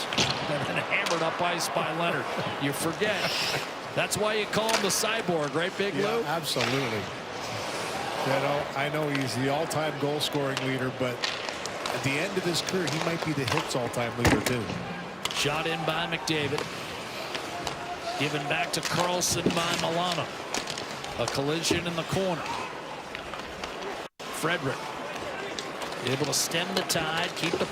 And then hammered up ice by Leonard. You forget. That's why you call him the cyborg, right, Big Lou? Absolutely. You know, I know he's the all-time goal-scoring leader, but at the end of his career, he might be the hits all-time leader, too. Shot in by McDavid. Given back to Carlson by Milano. A collision in the corner. Frederick able to stem the tide, keep the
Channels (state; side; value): identical; both; correlation 1.00